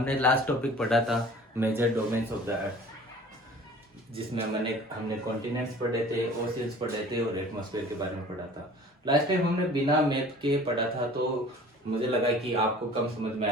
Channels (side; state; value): both; normal; correlation 0.46